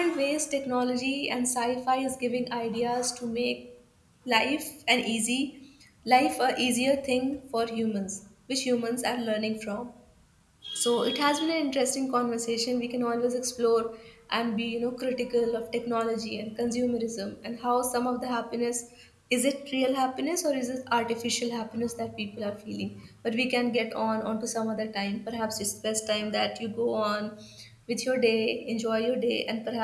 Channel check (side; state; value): both; identical; correlation 1.00